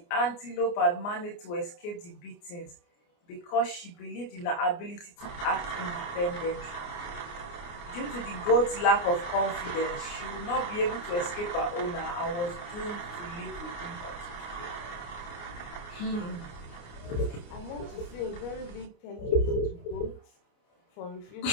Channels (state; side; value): late; right; 29 ms